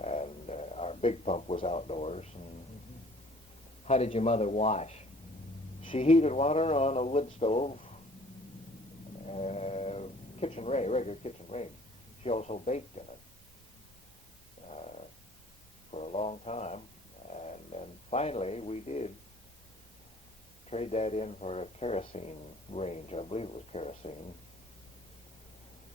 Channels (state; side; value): normal; both; correlation 0.54